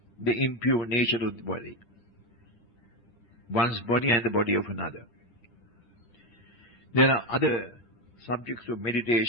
the impure nature of the body, one's body and the body of another. There are other subjects of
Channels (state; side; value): late; right; 8.5 ms